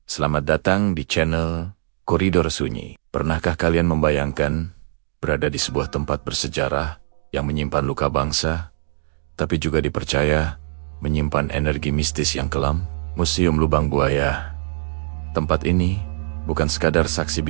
selamat datang di channel Koridor Sunyi. Pernahkah kalian membayangkan berada di sebuah tempat bersejarah yang menyimpan luka bangsa, tapi juga dipercaya menyimpan energi mistis yang kelam? Museum Lubang Buaya. Tempat ini bukan sekadar saksi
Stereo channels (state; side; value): silent; left; 64 dB below the other